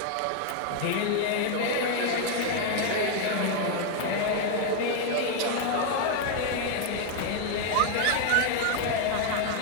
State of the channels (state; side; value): different; both; correlation 0.00